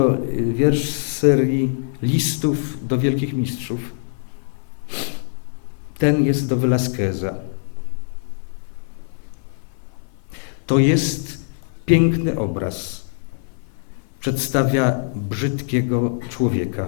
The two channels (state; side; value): silent; right; 56 dB below the other